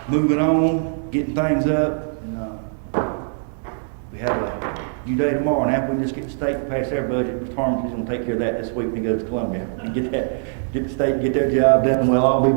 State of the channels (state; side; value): silent; left; digital silence